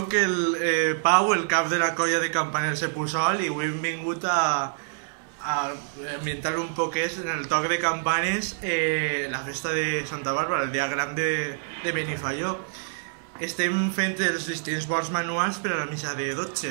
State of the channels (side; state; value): left; silent; digital silence